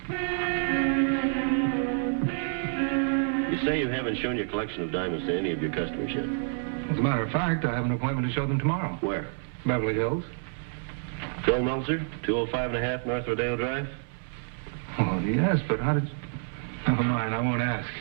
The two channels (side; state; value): left; silent; 59 dB below the other